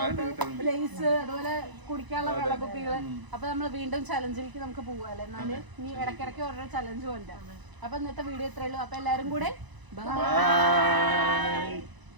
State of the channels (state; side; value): late; left; 1.0 ms